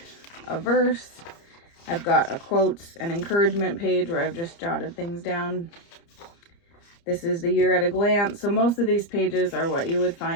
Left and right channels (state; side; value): late; right; 30 ms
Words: a verse. I've got a quotes and encouragement page where I've just jotted things down. This is the year at a glance, so most of these pages are what you would